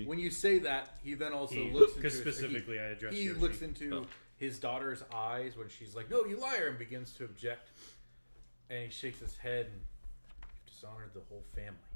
When you say that, he then also looks into because his- specifically I addressed He Yoshi. looks into Oh. his daughter's eyes when she's like, "No, you liar," and begins to object. And he shakes his head and you've dishonored the whole family.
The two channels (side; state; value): both; inverted; correlation -1.00